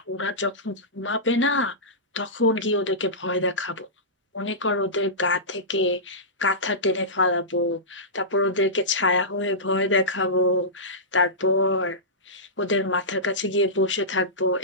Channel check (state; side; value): normal; both; correlation -0.16